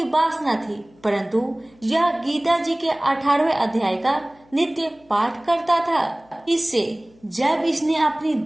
वासना थी, परंतु यह गीता जी के 18वें अध्याय का नित्य पाठ करता था। इससे जब इसने अपनी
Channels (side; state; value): left; noise; hum, 29 dB below the sound